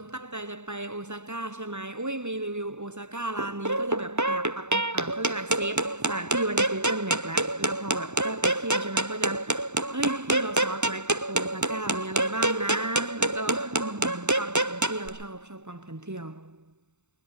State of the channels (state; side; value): late; left; 0.83 ms